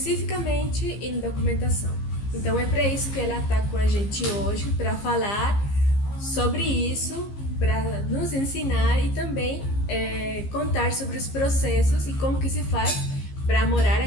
em documentação. Então é para isso que ela está com a gente hoje, para falar sobre isso, para nos ensinar e também contar sobre os processos e como que se faz para morar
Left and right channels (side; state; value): right; late; 15 ms